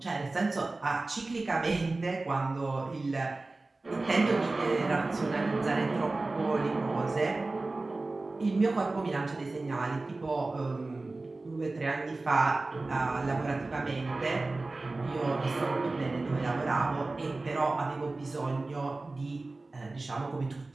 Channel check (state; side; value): quieter; left; 3.2 dB